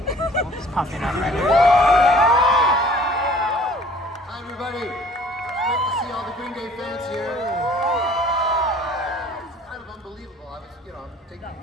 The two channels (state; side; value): normal; both; correlation 0.53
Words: Just popping up right here. Hi, everybody. Great to see all the Green Day fans here. It's kind of unbelievable. I was, I'm taking